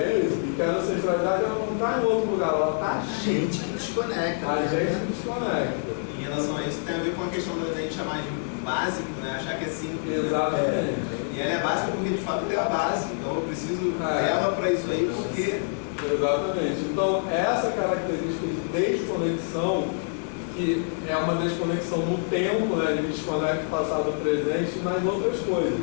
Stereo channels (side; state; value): right; silent; digital silence